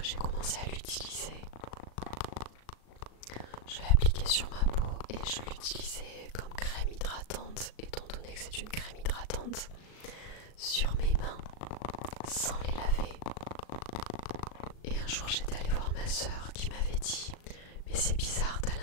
j'ai commencé à l'utiliser, je l'appliquais sur ma peau et je l'utilisais comme crème hydratante, étant donné que c'est une crème hydratante, sur mes mains, sans les laver. Et un jour j'étais allée voir ma soeur qui m'avait dit « Mais c'est bizarre, t'as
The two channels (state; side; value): late; right; 38 ms